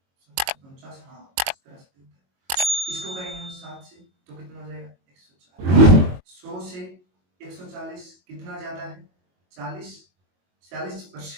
हाँ 17 इसको करेंगे हम 7 से तो कितना हो जाएगा 140, 100 से 140 कितना ज्यादा है,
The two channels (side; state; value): left; late; 22 ms